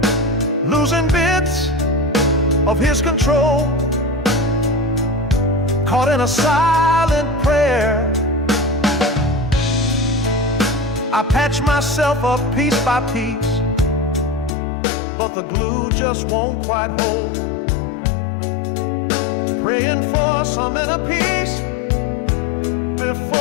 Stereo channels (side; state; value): right; drops out; at 14.5 s